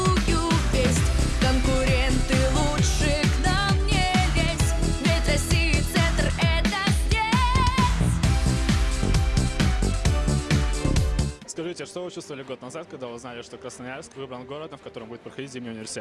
весть. Конкуренты лучше к нам не лезь, ведь России центр это здесь. Скажите, что вы чувствовали год назад, когда узнали, что Красноярск выбран городом, в котором будет проходить зимняя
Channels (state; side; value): identical; both; correlation 1.00